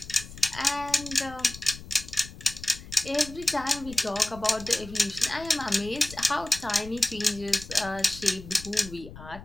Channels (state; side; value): noise; left; rumble, 15 dB below the sound